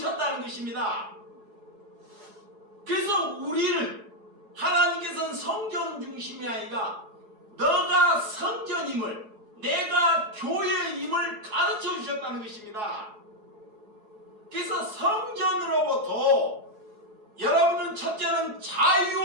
것입니다. 그래서 우리를 하나님께서는 성전 중심이 아니라 너가 성전임을, 내가 교회임을 가르쳐 주셨다는 것입니다. 그래서 성전으로부터 여러분은 첫째는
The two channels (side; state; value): left; late; 4.8 ms